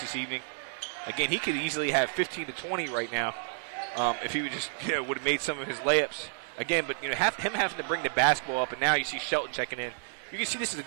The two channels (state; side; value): silent; left; digital silence